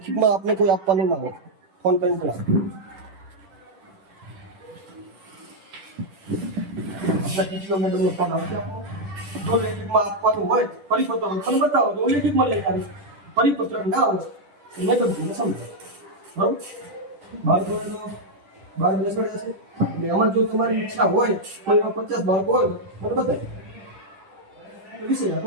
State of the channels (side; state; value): left; late; 10 ms